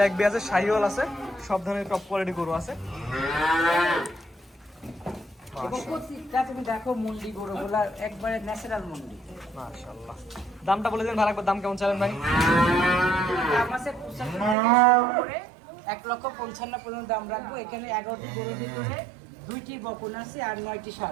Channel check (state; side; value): drops out; left; at 14.6 s